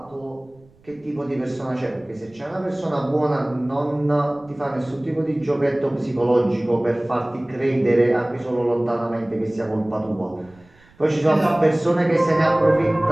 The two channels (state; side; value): noise; right; rumble, 29 dB below the sound